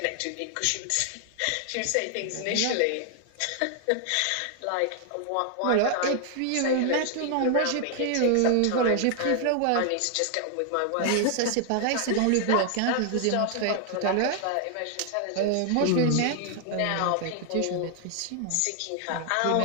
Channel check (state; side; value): different; both; correlation 0.00